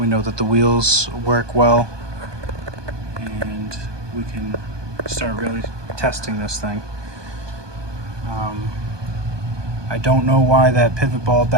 know that the wheels work well, and we can start really testing this thing. I don't know why that pivot ball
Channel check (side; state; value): left; late; 1.2 ms